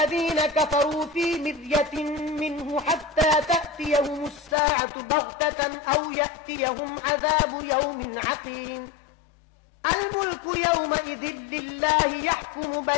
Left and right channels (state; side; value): drops out; right; at 4.5 s